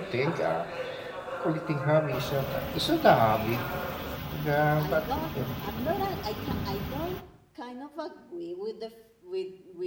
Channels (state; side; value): identical; both; correlation 1.00